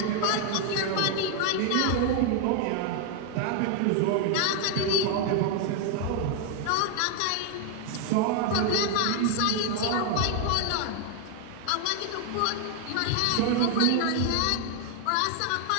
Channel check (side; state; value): both; different; correlation 0.00